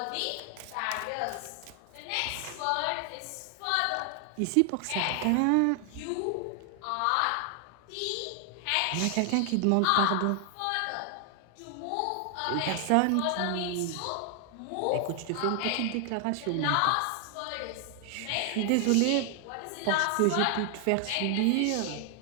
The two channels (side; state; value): both; different; correlation 0.00